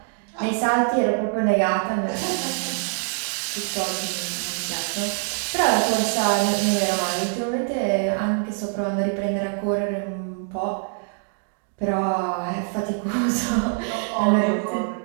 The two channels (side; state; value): left; silent; 57 dB below the other